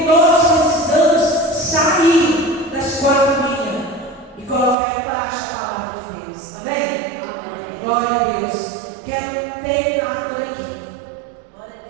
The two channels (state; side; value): drops out; left; at 4.8 s